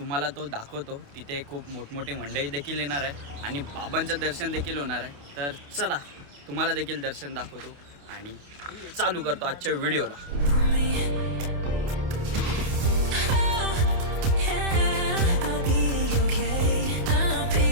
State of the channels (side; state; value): left; late; 28 ms